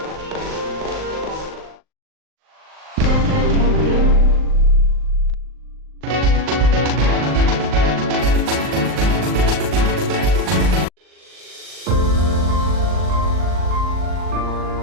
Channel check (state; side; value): late; left; 39 ms